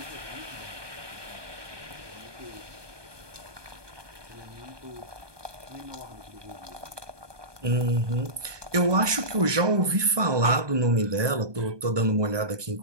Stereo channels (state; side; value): late; left; 1.2 ms